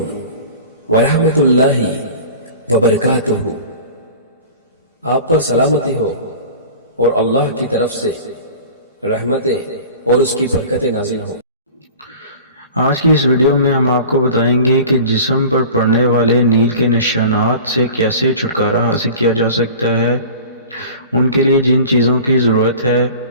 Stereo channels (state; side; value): inverted; both; correlation -0.40